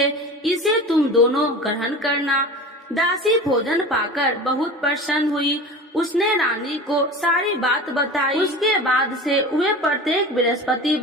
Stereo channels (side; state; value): both; normal; correlation 0.33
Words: इसे तुम दोनों ग्रहण करना। दासी भोजन पाकर बहुत प्रसन्न हुई। उसने रानी को सारी बात बताई। उसके बाद से वे प्रत्येक